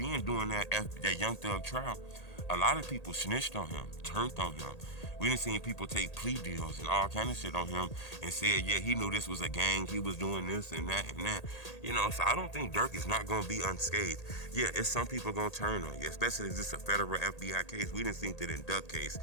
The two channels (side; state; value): right; late; 1.8 ms